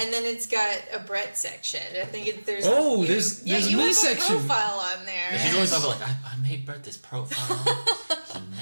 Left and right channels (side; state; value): both; inverted; correlation -1.00